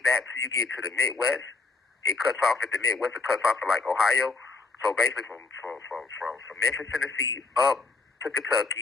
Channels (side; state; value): right; quieter; 3.8 dB